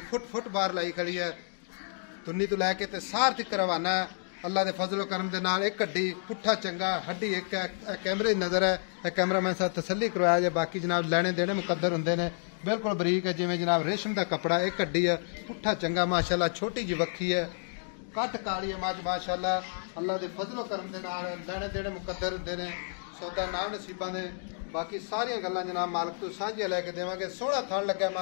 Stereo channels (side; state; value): right; silent; digital silence